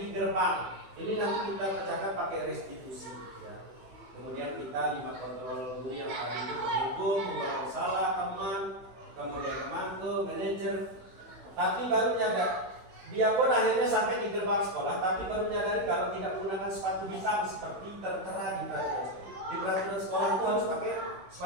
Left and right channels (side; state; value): left; late; 16 ms